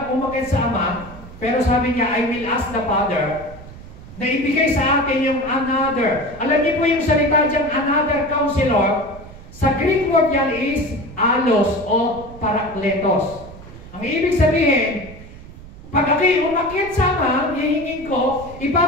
umakit sa Ama, pero sabi niya, I will ask the Father, na ibigay sa atin yung another. Alam niyo po yung salita dyan, another counselor, sa Greek word yan is alos o parakletos. Ang ibig sabihin, pag ako'y umakit sa Ama, hihingin ko,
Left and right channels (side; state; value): right; noise; rumble, 17 dB below the sound